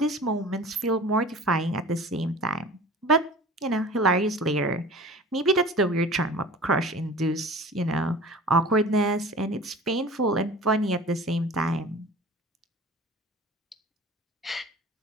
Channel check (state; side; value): normal; both; correlation 0.41